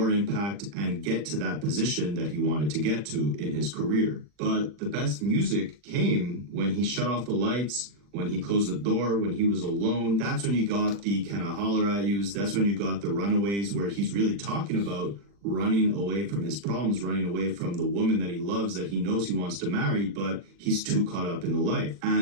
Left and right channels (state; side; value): late; left; 40 ms